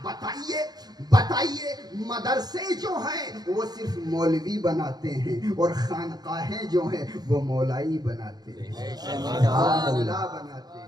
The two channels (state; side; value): late; left; 0.19 ms